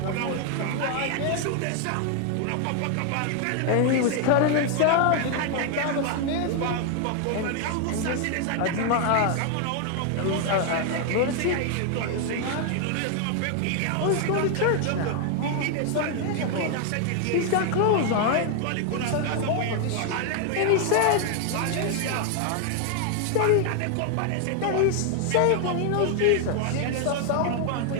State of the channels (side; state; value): both; different; correlation 0.00